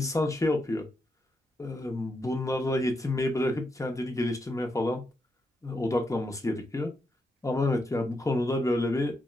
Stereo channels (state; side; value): normal; both; correlation 0.82